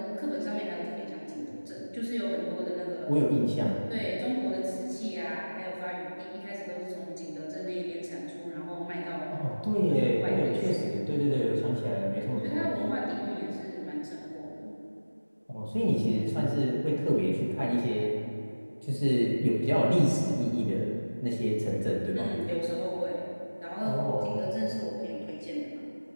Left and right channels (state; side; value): inverted; both; correlation -1.00